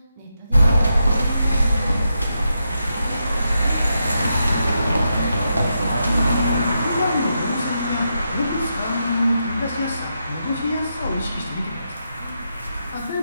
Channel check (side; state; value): both; inverted; correlation -0.84